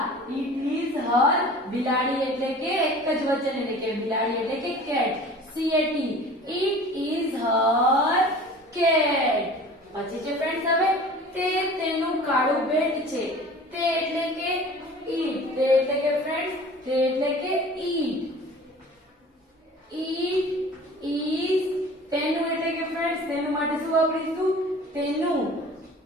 It is her. બિલાડી એટલે કે એક જ વચન એટલે કે બિલાડી એટલે કે cat. C A T. It is Har cat. પછી છે ફ્રેન્ડ્સ હવે તે તેનું કાળું બેટ છે. તે એટલે કે ઈટ. તે એટલે કે ફ્રેન્ડ્સ તે એટલે કે ઈટ. ઈટ ઇઝ તેનું એટલે કે ફ્રેન્ડ્સ તેનું માટે શું વાપરીશું? તેનું.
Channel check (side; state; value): both; normal; correlation 0.43